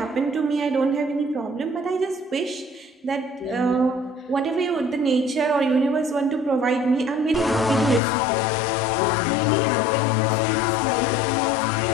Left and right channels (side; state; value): right; drops out; at 8.0 s